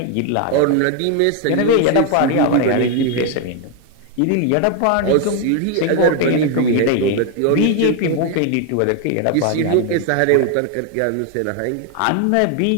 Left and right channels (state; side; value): different; both; correlation 0.01